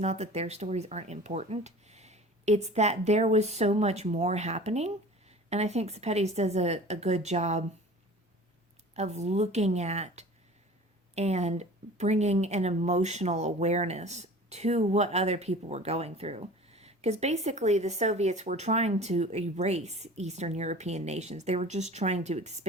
that their stories aren't important. It's that there was so much more happening. And I think Sepetys does a good job of looking at and bringing an emotional awareness to what other people were going through. Because basically the Soviets were trying to erase Eastern European nations. They were just trying to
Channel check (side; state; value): both; normal; correlation 0.41